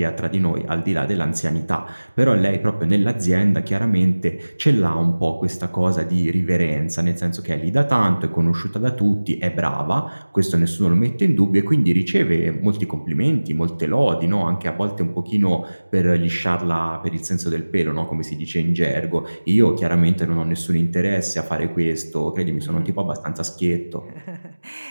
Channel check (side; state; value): both; inverted; correlation -1.00